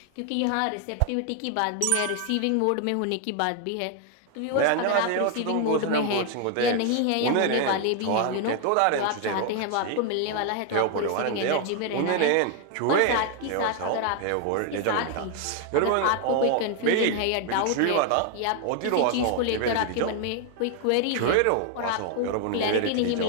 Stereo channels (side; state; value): both; different; correlation 0.00